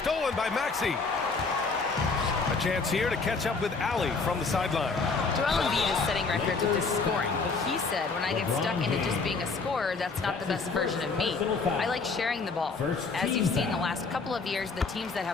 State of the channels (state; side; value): quieter; right; 4.3 dB